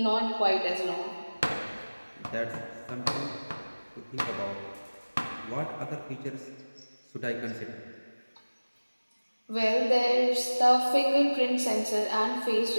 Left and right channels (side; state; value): both; inverted; correlation -1.00